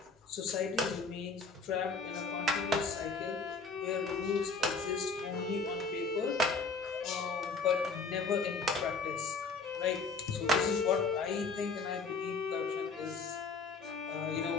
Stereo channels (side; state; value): right; quieter; 4.2 dB